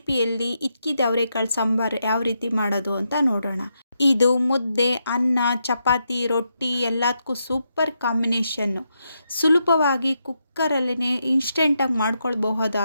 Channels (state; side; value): inverted; both; correlation -0.82